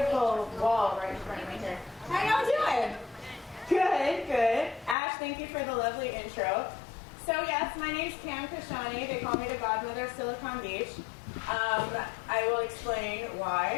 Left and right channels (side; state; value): right; drops out; at 5.0 s